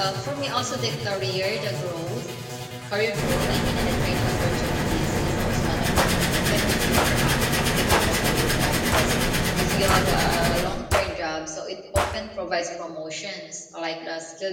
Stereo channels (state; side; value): identical; both; correlation 1.00